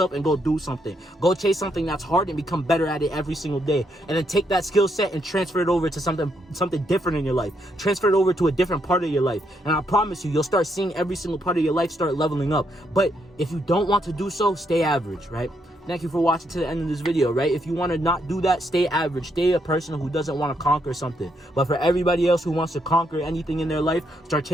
up and go do something. Go chase something that's hard and become better at it every single day. And then take that skill set and transfer it over to something different in your life. Transfer it over to a different part of your life. And I promise you, you'll start seeing every single part of your life start leveling up. But if you don't want to do so, stay average, right? Thank you for watching to the end of this video, right? If you want to not do that, stay average. Stay a person who doesn't want to conquer something. But for everybody else who wants to conquer anything in their life, start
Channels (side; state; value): both; normal; correlation 0.76